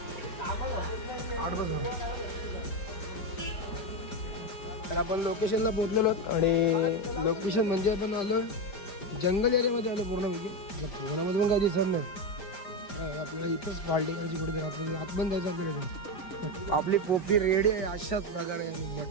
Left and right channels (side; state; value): right; late; 5.1 ms